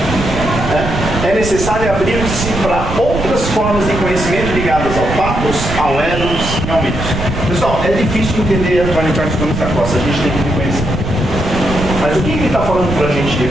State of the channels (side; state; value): right; noise; rumble, 5 dB below the sound